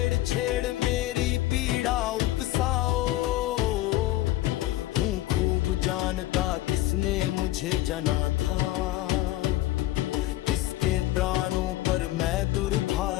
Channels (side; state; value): right; quieter; 16.0 dB